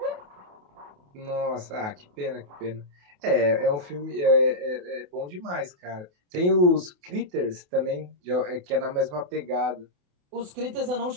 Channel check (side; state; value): left; late; 28 ms